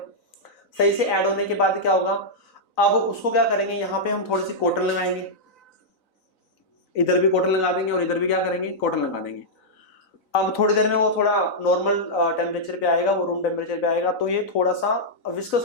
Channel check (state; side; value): late; right; 3.9 ms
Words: सही से ऐड होने के बाद क्या होगा, अब उसको क्या करेंगे, यहाँ पे हम थोड़ी सी कॉटन लगाएंगे, इधर भी कॉटन लगा देंगे और इधर भी क्या करेंगे, कॉटन लगा देंगे। अब थोड़ी देर में वो थोड़ा नॉर्मल टेम्परेचर पे आएगा, वो रूम टेम्परेचर पे आएगा, तो ये थोड़ा सा विस्कस